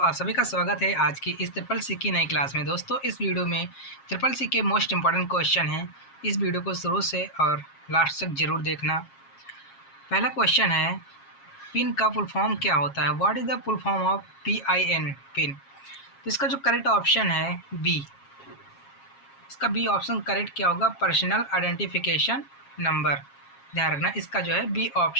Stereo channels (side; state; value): right; late; 7.4 ms